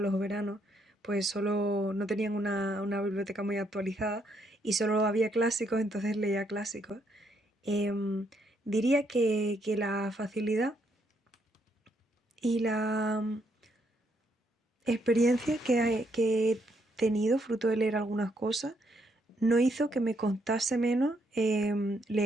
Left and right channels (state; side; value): normal; both; correlation 0.74